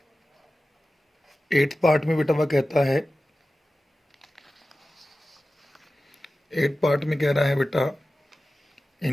में बेटा वह कहता है, 8 पार्ट में कह रहा है बेटा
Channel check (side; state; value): both; normal; correlation 0.95